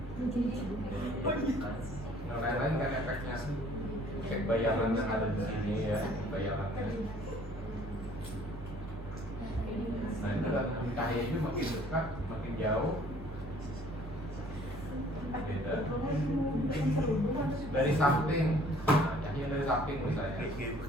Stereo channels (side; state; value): both; normal; correlation 0.56